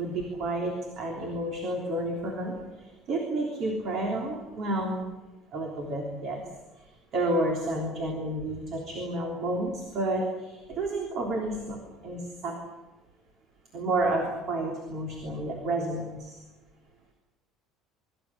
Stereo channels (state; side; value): normal; both; correlation 0.44